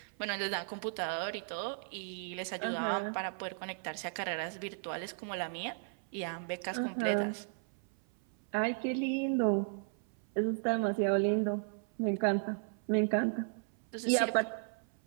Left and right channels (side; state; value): left; silent; 54 dB below the other